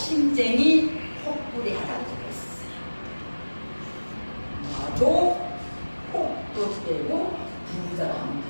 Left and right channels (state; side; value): inverted; both; correlation -1.00